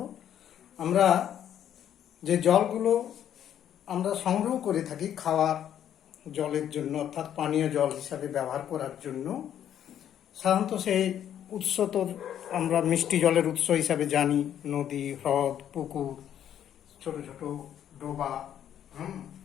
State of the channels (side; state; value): right; quieter; 10.1 dB